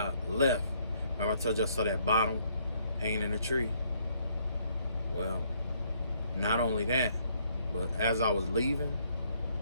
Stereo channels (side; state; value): both; inverted; correlation -0.68